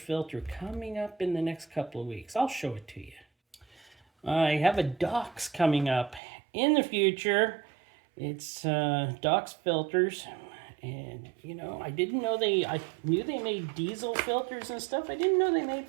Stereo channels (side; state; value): left; drops out; at 6.2 s